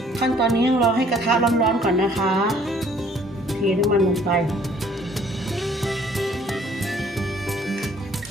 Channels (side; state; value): both; normal; correlation 0.59